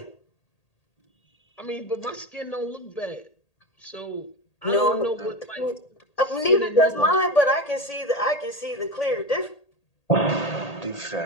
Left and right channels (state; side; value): late; right; 1.8 ms